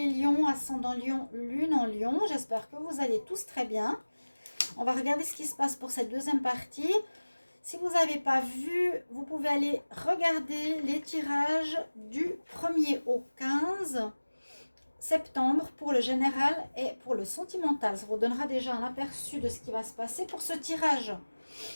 Lions, ascendant Lion, lune en Lion. J'espère que vous allez tous très bien. On va regarder ce qui se passe pour cette deuxième partie. Si vous n'avez pas vu, vous pouvez aller regarder les tirages du 1er au 15 septembre pour le général et pour le sentimental. Ça vous donnera déjà un aperçu de ce qui va se passer pour ce tirage.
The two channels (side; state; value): both; inverted; correlation -1.00